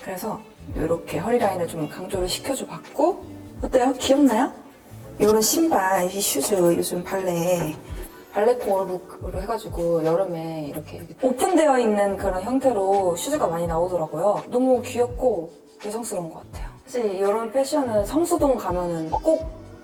그래서 이렇게 허리 라인을 좀 강조를 시켜줘 봤고, 어때요? 귀엽나요? 이런 신발, 이 슈즈 요즘 발레코어 룩으로 해가지고 여름에 이렇게 오픈되어 있는 그런 형태로 슈즈가 많이 나오더라고요. 너무 귀엽고 여성스러운 것 같아요. 사실 이런 패션은 성수동 가면은 꼭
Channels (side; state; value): both; identical; correlation 1.00